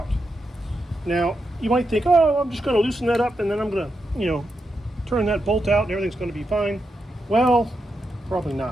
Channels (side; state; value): both; normal; correlation 0.85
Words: Now, you might think, oh, I'm just going to loosen that up and then I'm going to, turn that bolt out and everything's going to be fine. Well, probably